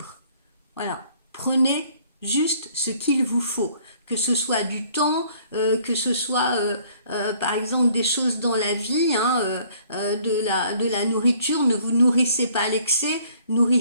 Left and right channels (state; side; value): inverted; both; correlation -0.59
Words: Voilà, prenez juste ce qu'il vous faut, que ce soit du temps, que ce soit par exemple des choses dans la vie, hein, de la nourriture. Ne vous nourrissez pas à l'excès,